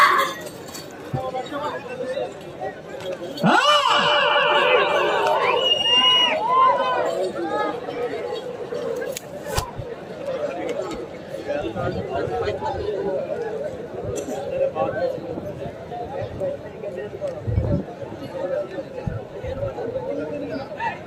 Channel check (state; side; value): identical; both; correlation 1.00